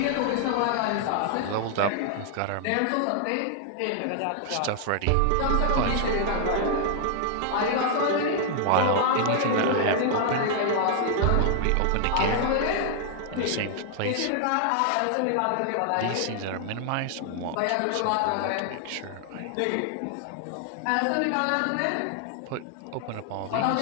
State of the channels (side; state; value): both; different; correlation 0.00